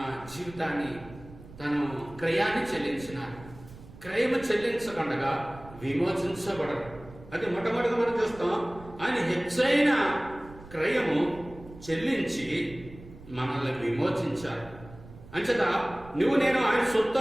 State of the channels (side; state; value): right; noise; rumble, 18 dB below the sound